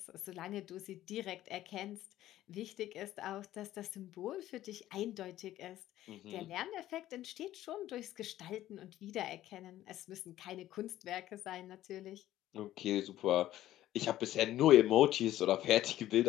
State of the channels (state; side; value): quieter; right; 13.9 dB